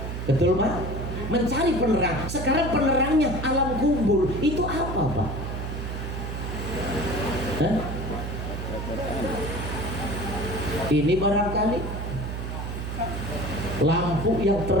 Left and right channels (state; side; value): noise; right; hum, 5 dB below the sound